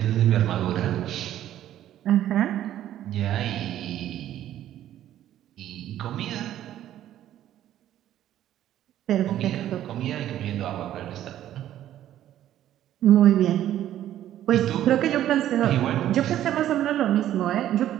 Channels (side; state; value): left; quieter; 12.2 dB